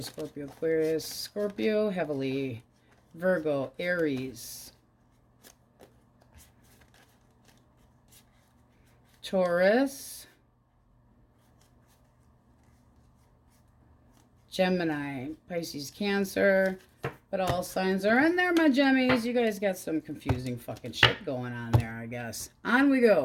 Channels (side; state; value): both; identical; correlation 1.00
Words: Aquarius. Scorpio, heavily. Virgo, Aries. Taurus, Gemini, Pisces, Cancer, but all signs are in there, my Gemmies. You guys got some confusing fucking shit going on there, I guess. On we